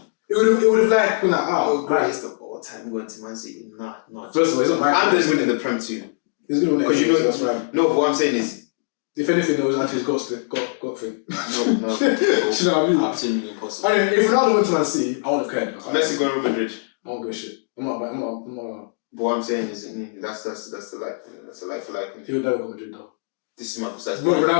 It would have like been like, Oh, oh, greatest of all time going to Man City. Nah. First of all, it's not my I'm just winning the Prem too. He's gonna win Because you know, that's fine. no, but what I'm saying is, If anything, there was actually his got thing. no. Do you know what I mean? Absolutely impossible. I mean, if Ronaldo went to Man City, I wouldn't have cared. Messi going to Real Madrid. I don't give a shit. I'm not. But what I'm saying is, that's the like for like. He would never go to Madrid though. This is my precise But point.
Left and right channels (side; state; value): right; silent; digital silence